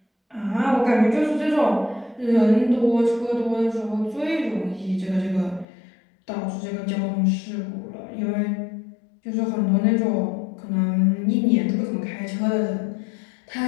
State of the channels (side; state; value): right; drops out; at 5.7 s